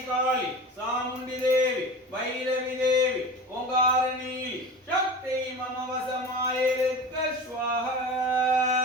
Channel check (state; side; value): normal; both; correlation 0.33